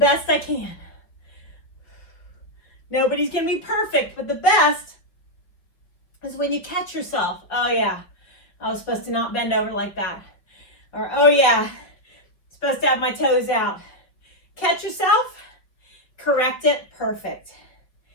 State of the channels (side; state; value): right; late; 5.1 ms